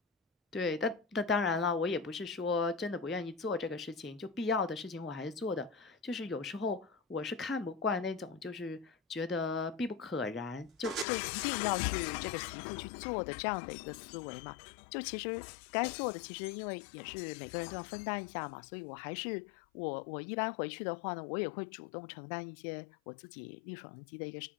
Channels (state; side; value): drops out; right; at 11.1 s